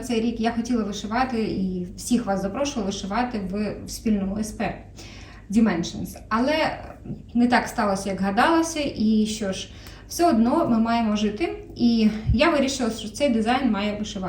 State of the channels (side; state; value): both; identical; correlation 1.00